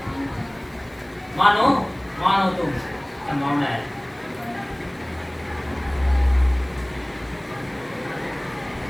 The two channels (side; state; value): left; noise; hiss, 30 dB below the sound